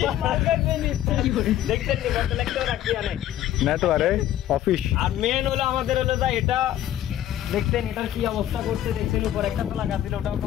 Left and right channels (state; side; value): quieter; right; 12.3 dB